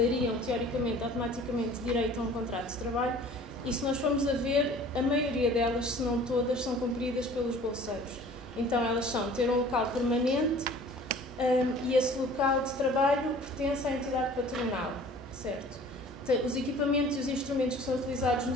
teoricamente, automaticamente, direito a um contrato de trabalho. E se nós formos a ver, a maioria delas, se não todas, são cumpridas pelos bolseiros. Então elas são ter um local permanente e esse local de trabalho pertence à entidade patronal, certo? Os equipamentos e os instrumentos que são utilizados no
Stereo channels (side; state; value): both; normal; correlation 0.48